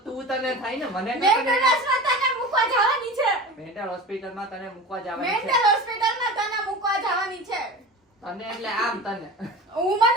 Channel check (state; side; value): normal; both; correlation 0.33